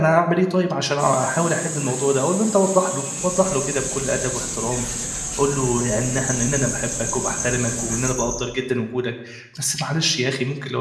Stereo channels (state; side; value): identical; both; correlation 1.00